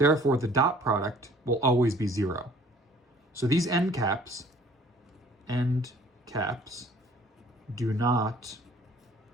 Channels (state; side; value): normal; both; correlation 0.54